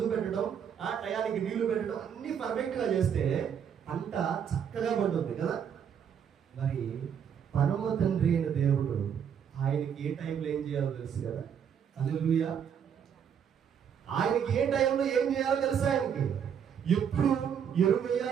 పెట్టడం, టయానికి నీళ్లు పెట్టడం అన్ని పర్ఫెక్ట్ గా చేస్తే పంట చక్కగా పండుతుంది కదా. మరి పరమ తండ్రి అయిన దేవుడు ఆయనకి ఏ టైంలో ఏం చేయాలో తెలుసు కదా. హల్లెలూయా. ఆయనకి ఏ టైంలో ఏం చేయాలో తెలుసు. ఆయనకి ఎప్పుడు ఎరువు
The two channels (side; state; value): left; quieter; 8.0 dB